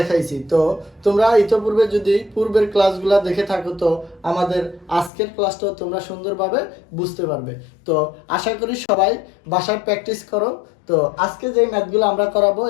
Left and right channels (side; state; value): right; drops out; at 5.1 s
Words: তো তোমরা ইতিপূর্বে যদি পূর্বের ক্লাসগুলো দেখে থাকো তো আমাদের আজকের ক্লাসটাও তোমরা সুন্দরভাবে বুঝতে পারবে। তো আশা করি সবাই বাসায় প্র্যাকটিস করো। তো আজকে যে ম্যাথগুলো আমরা করাবো